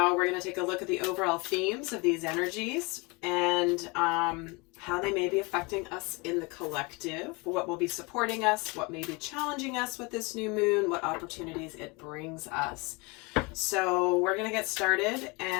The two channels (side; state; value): right; quieter; 27.5 dB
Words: we're going to take a look at the overall themes of these energies and how they may be affecting us in the collective, what will be supporting us, what may be challenging us with this new moon, what opportunities it brings us. So we're going to get started